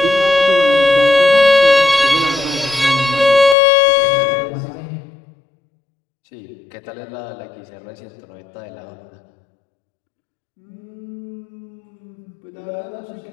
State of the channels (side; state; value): right; drops out; at 3.6 s